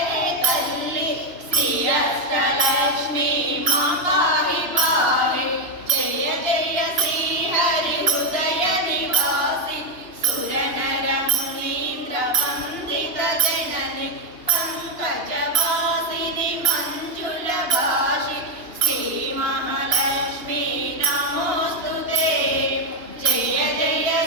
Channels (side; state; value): left; late; 2.8 ms